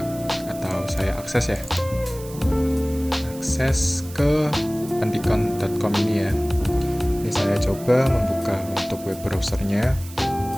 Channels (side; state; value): right; noise; hiss, 17 dB below the sound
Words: atau saya akses ya. Akses ke pendikom.com ini ya. Ini saya coba membuka untuk web browsernya.